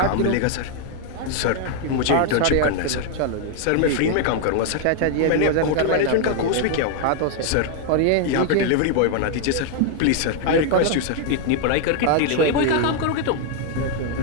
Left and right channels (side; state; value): both; different; correlation 0.00